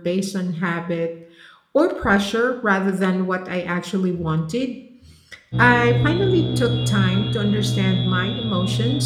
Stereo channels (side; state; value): both; identical; correlation 1.00